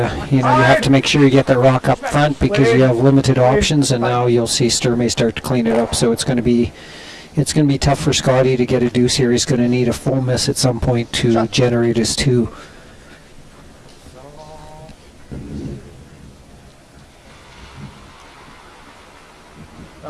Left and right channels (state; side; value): identical; both; correlation 1.00